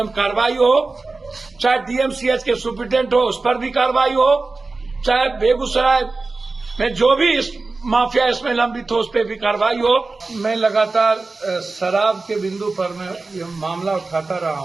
कार्रवाई हो। चाहे डीएमसीएच के सुपरिटेंडेंट हो उस पर भी कार्रवाई हो, चाहे बेगूसराय में जो भी इस माफिया इसमें लंबित हो उस पर भी कार्रवाई हो। मैं लगातार शराब के बिंदु पर मैं ये मामला उठाता रहा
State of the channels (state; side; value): quieter; left; 3.6 dB